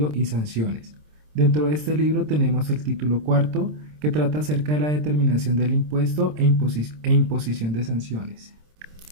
y sanciones. Dentro de este libro tenemos el título cuarto que trata acerca de la determinación del impuesto e imposición de sanciones.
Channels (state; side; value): late; left; 26 ms